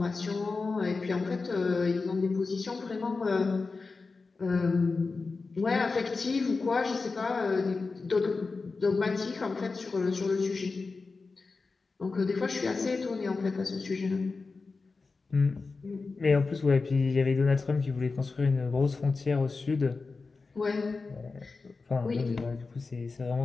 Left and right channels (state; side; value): quieter; right; 4.1 dB